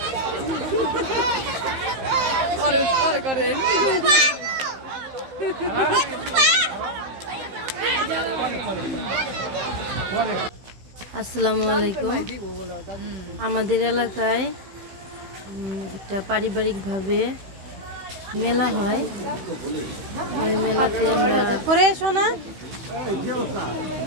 আসসালামু আলাইকুম। আমাদের এলাকায় একটা পারিবারিকভাবে মেলা হয়। ওই মেলাতে আমরা করে শোনা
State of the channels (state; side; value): late; left; 15 ms